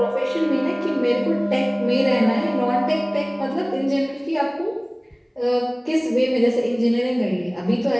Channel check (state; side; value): identical; both; correlation 1.00